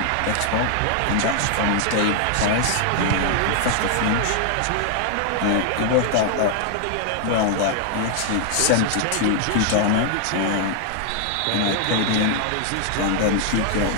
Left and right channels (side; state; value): both; different; correlation 0.00